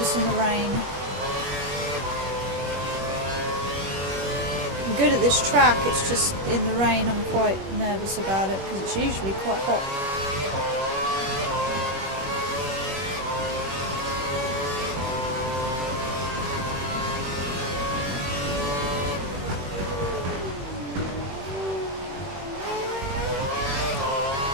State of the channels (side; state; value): left; late; 21 ms